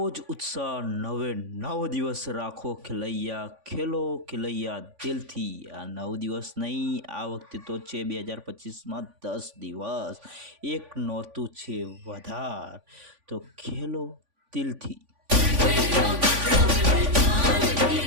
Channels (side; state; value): left; late; 3.5 ms